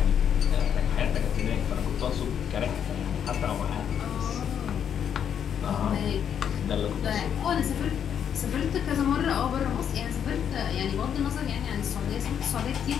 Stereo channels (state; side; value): quieter; right; 8.5 dB